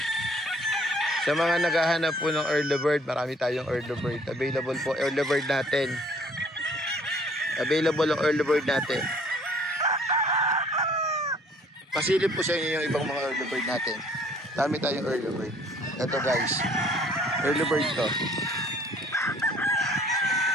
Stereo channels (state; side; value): normal; both; correlation 0.58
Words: Sa mga naghahanap po ng early bird, marami tayong early bird. Available po early bird natin. Available ang early bird natin. Pasilip po sa inyo yung ibang mga early bird natin. Dami tayong early bird. Ito guys, early bird to.